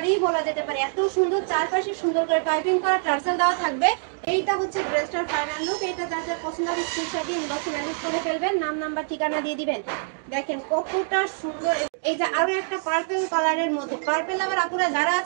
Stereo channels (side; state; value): left; silent; digital silence